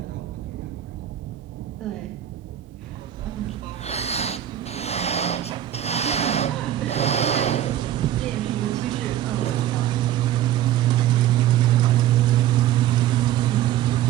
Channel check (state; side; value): quieter; left; 12.1 dB